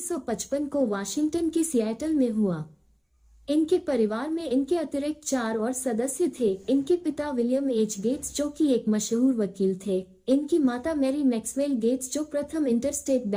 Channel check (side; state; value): both; identical; correlation 1.00